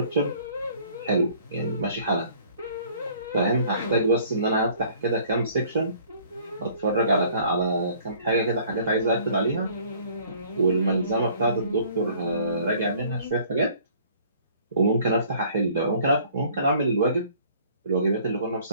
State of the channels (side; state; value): both; inverted; correlation -0.56